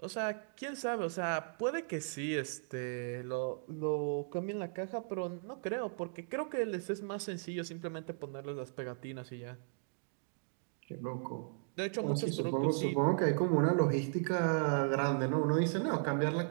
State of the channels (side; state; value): left; silent; digital silence